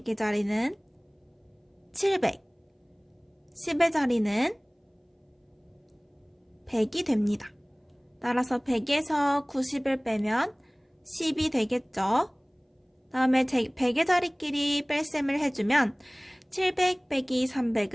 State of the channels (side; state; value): both; identical; correlation 1.00